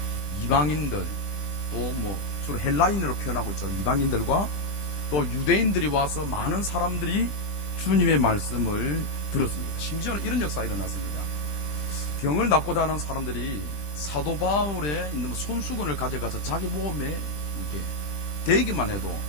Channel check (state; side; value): late; right; 20 ms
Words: 이방인들 또 주로 헬라인으로 표현하고 있죠. 이방인들과 또 유대인들이 와서 많은 사람들이 주님의 말씀을 들었습니다. 심지어는 이런 역사가 일어났습니다. 병을 낫고자 하는 사람들이 사도 바울에 있는 손수건을 가져가서 자기 몸에 이렇게 대기만 해도